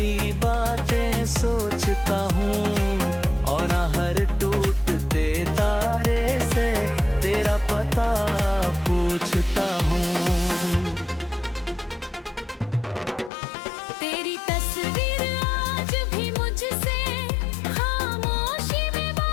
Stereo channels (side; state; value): right; drops out; at 13.3 s